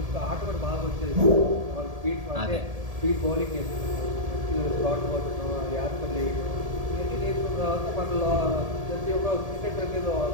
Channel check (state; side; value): late; left; 1.8 ms